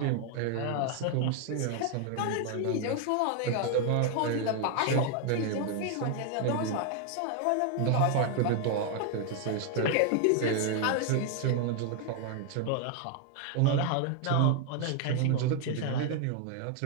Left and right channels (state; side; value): different; both; correlation 0.01